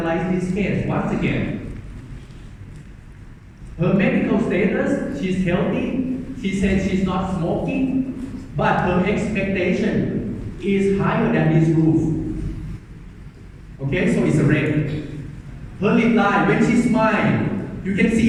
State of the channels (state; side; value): identical; both; correlation 1.00